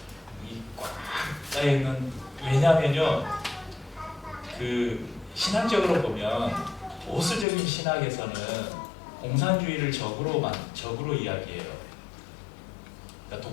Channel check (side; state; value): right; drops out; at 7.5 s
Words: 이 꽉 짜여있는, 왜냐하면요, 그 신학적으로 보면 보수적인 신학에서는 공산주의를 적으로 이야기해요. 그러니까